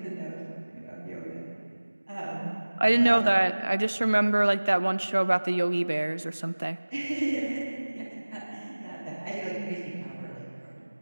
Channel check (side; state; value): both; inverted; correlation -1.00